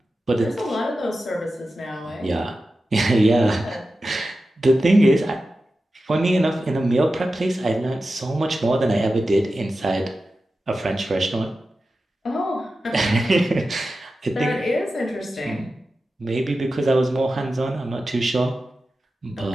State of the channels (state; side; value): normal; both; correlation 0.93